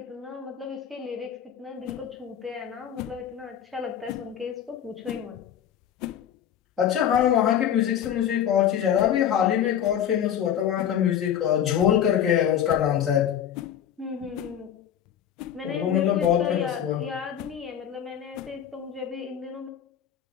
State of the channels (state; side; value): quieter; right; 9.6 dB